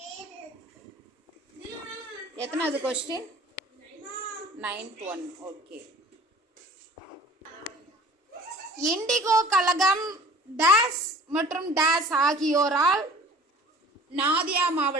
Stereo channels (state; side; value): normal; both; correlation 0.47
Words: எத்தனாவது question? 9th one. Okay. Indigo கழகம் டேஷ் மற்றும் டேஷ் ஆகியோரால் நாதியா